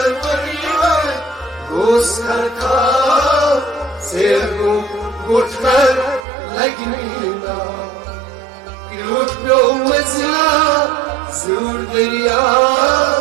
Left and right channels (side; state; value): left; drops out; at 6.2 s